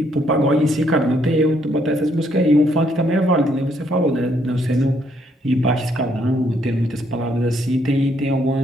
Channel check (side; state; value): both; normal; correlation 0.70